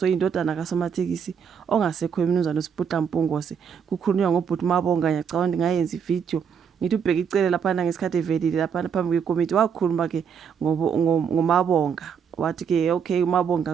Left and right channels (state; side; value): quieter; left; 7.2 dB